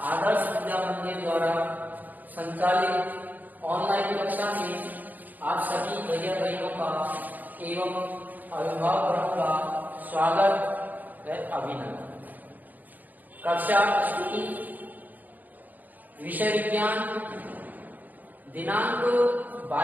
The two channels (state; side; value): late; left; 0.083 ms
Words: आदर्श विद्या मंदिर द्वारा संचालित ऑनलाइन कक्षा में आप सभी भैया बहनों का एवं अभिभावकों का स्वागत व अभिनंदन। कक्षा स्तुति, विषय विज्ञान, दिनांक